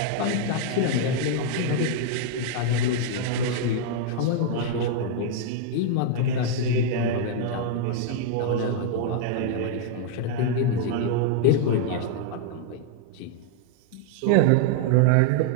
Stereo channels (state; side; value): different; both; correlation 0.00